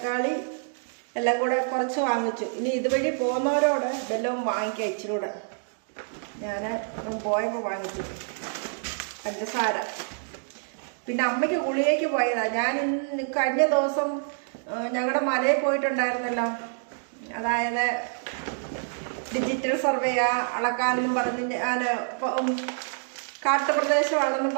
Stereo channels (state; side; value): silent; left; digital silence